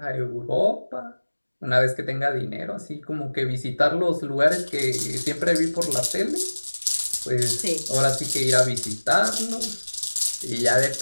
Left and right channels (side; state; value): both; inverted; correlation -1.00